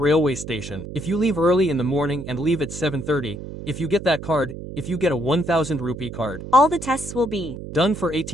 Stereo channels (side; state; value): right; noise; hum, 10 dB below the sound